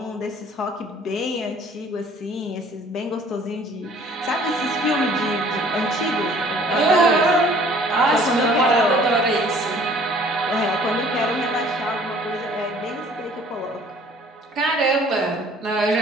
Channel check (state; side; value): normal; both; correlation 0.54